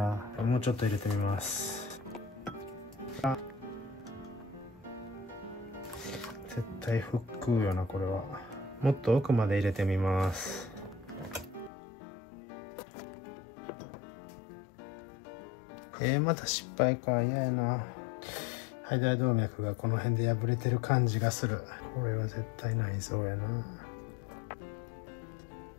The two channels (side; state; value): right; drops out; at 11.7 s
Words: もうちょっと入れてみます。絶対腹腔よな、これは。もっと奥まで入れてみます。また失敗か。嫌やな。肺大動脈がこの辺で破れてる感じがする。これは絶対内臓やな。